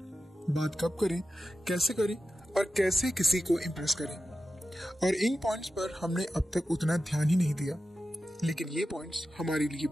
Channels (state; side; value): normal; both; correlation 0.93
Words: बात कब करें, कैसे करें और कैसे किसी को इम्प्रेस करें। और इन पॉइंट्स पर हमने अब तक उतना ध्यान ही नहीं दिया, लेकिन ये पॉइंट्स हमारे लिए